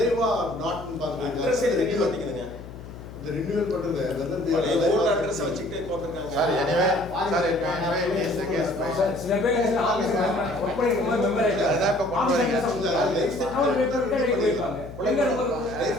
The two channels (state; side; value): noise; left; hum, 14 dB below the sound